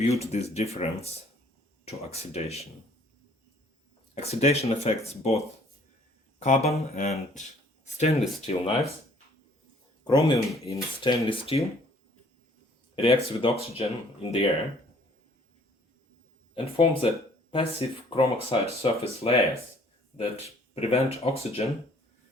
this difference to oxidation. Oxidation affects both carbon and stainless steel knives. Chromium in stainless steel reacts with oxygen in the air and forms a passive chrome oxide surface layers that prevent oxygen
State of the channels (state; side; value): normal; both; correlation 0.58